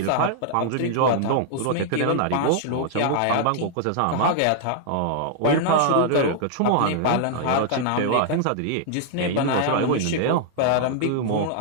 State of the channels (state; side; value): different; both; correlation -0.01